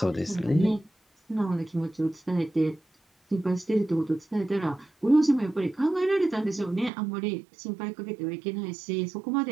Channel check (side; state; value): left; drops out; at 6.9 s